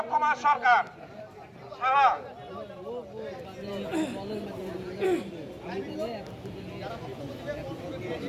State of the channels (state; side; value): identical; both; correlation 1.00